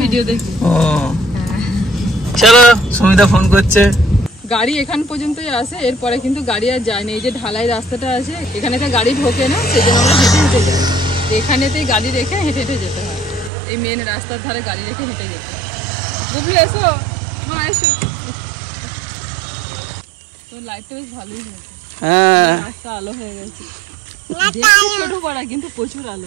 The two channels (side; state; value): left; drops out; at 13.5 s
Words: ভিডিও দেখি। ও চলো, সুমিতা ফোন করছে। গাড়ি এখান পর্যন্তই আসে, এরপরে কিন্তু গাড়ি আর যায় না। এই যে ঢালাই রাস্তাটা আছে, এখানে তো গাড়ি ঢোকে না, সেই জন্য আমরা হেঁটে হেঁটে যাই। এখানেতেই গাড়ি রেখে হেঁটে হেঁটে যেতে হয়, এই মেন রাস্তার ধারে গাড়ি রেখে হেঁটে যেতে হয়। বুবলু এসো, মা এসো। তোর লাইটটা বেশ ভালোই হয়েছে, হ্যাঁ রাস্তা আলো হয়ে গেছে। দেখতে ছোট পাড়া কিন্তু প্রচুর